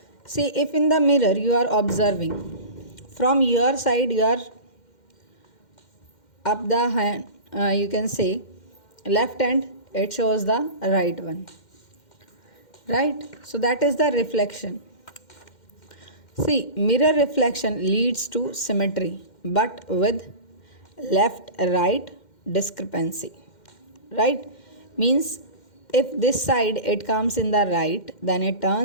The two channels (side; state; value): right; late; 2.1 ms